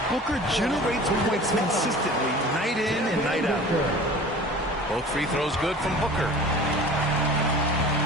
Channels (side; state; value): both; normal; correlation 0.42